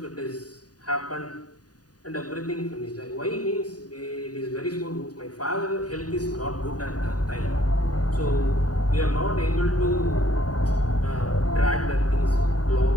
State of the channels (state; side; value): late; right; 0.68 ms